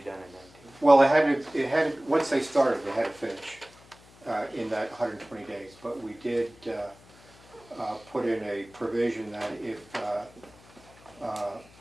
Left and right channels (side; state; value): left; noise; hum, 25 dB below the sound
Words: done in 19? Well, it had to, once they started, they had to finish in that 120 days. But we did put in a provision that if